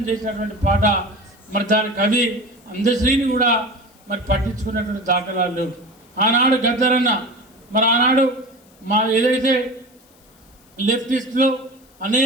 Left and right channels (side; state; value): left; noise; hiss, 30 dB below the sound